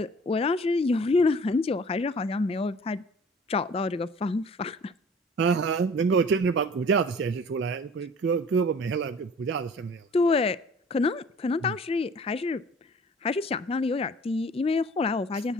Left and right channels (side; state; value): both; normal; correlation 0.48